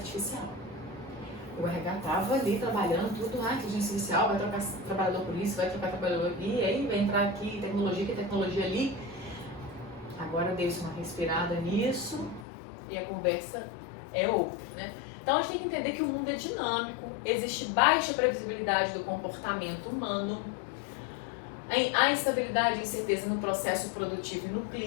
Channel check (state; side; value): drops out; right; at 12.5 s